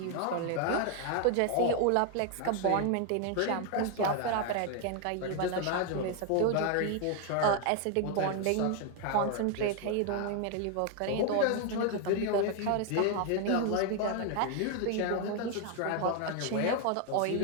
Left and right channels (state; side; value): different; both; correlation 0.01